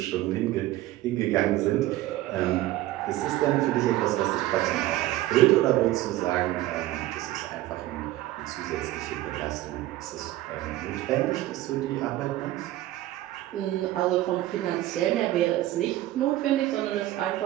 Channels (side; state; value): left; quieter; 15.8 dB